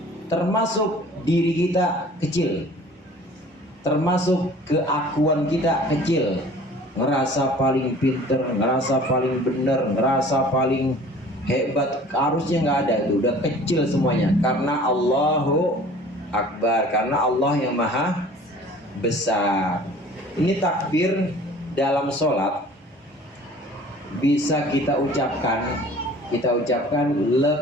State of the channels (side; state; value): both; normal; correlation 0.48